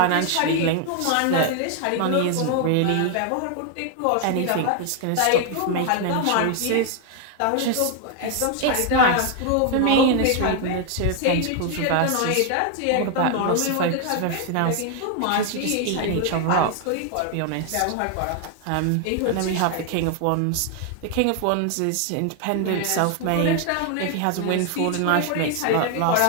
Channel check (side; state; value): both; different; correlation 0.00